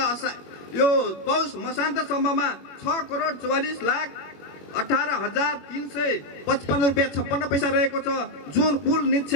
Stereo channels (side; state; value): right; late; 21 ms